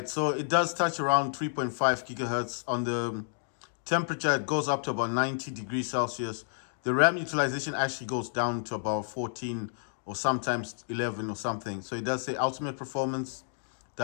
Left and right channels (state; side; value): silent; right; digital silence